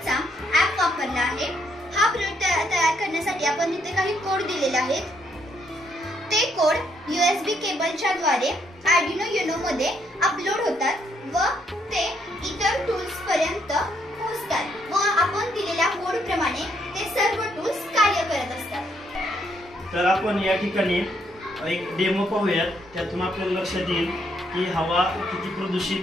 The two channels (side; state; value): both; normal; correlation 0.73